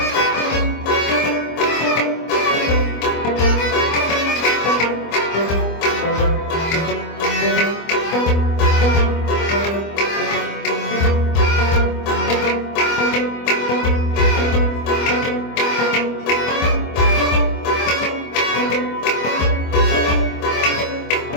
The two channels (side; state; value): right; late; 25 ms